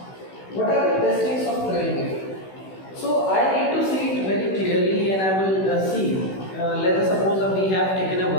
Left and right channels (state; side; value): late; right; 16 ms